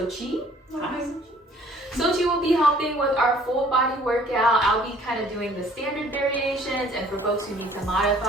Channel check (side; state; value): both; normal; correlation 0.56